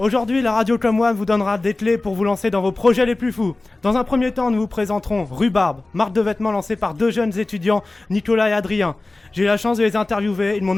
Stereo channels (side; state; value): right; quieter; 3.1 dB